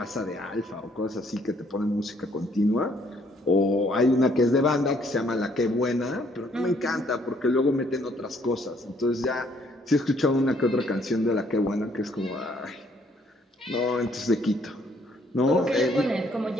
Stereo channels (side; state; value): both; normal; correlation 0.66